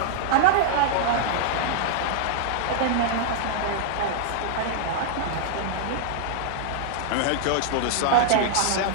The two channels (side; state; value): both; different; correlation -0.01